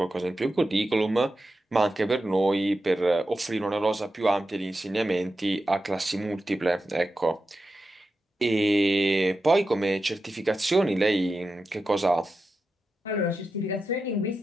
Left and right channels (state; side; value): normal; both; correlation 0.91